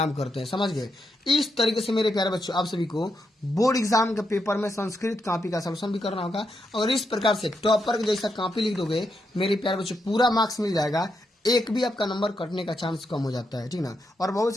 करते हैं, समझ गए। इस तरीके से मेरे प्यारे बच्चों आप सभी को बोर्ड एग्जाम के पेपर में संस्कृत कॉपी का सॉल्यूशन भी करना होगा, और इस प्रकार से टॉपर जैसा कॉपी लिख दोगे मेरे प्यारे बच्चों पूरा मार्क्स मिल जाएगा, एक भी आपका नंबर कटने का चांस कम हो जाता है, ठीक ना। और बहुत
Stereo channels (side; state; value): both; normal; correlation 0.82